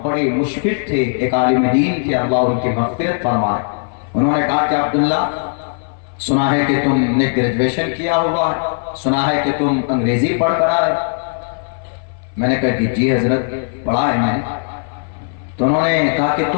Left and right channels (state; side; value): silent; right; 58 dB below the other